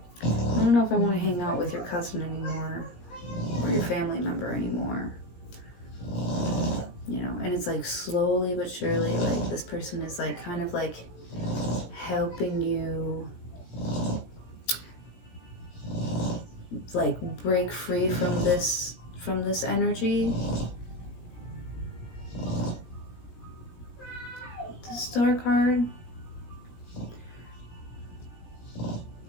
I don't know if I want to hang out with your cousin anymore, or your family member anymore. You know, and it's like slowly but surely, like this person is like kind of like helping you like break free from this energy. The Star card.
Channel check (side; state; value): right; late; 17 ms